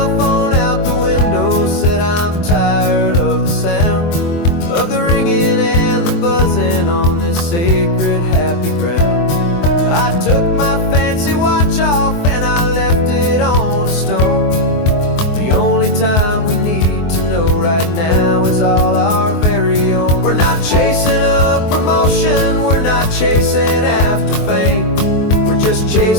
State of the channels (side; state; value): right; late; 23 ms